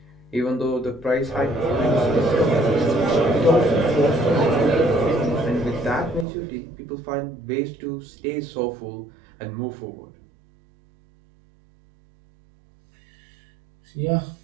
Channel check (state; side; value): drops out; left; at 6.2 s